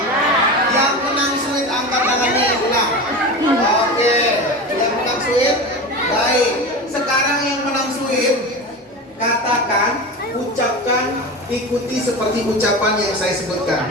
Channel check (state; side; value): normal; both; correlation 0.27